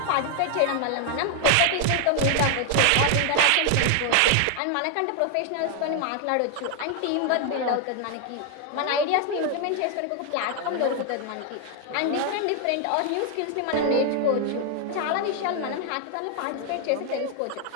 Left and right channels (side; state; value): both; different; correlation 0.00